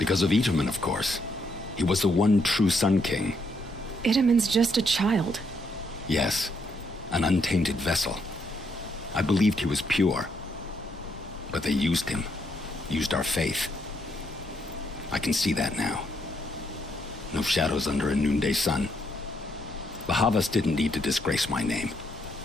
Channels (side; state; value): both; normal; correlation 0.75